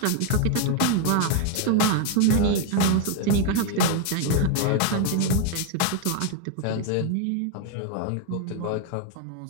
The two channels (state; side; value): different; both; correlation 0.00